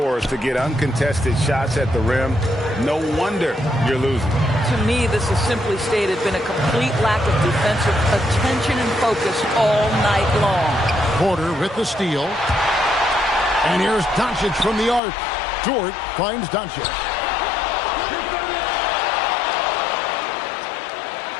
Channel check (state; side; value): drops out; right; at 15.0 s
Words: to get uncontested shots at the rim, no wonder you're losing. To me, this has simply stated been a complete lack of defensive attention and focus all night long. Porter with the steal. And here's Doncic from the arc. Dort finds Doncic.